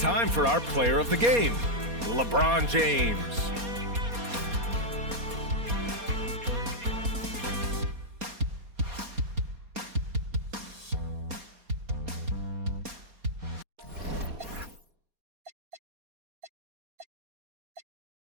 for our player of the game, LeBron James.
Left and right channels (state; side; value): late; left; 4.2 ms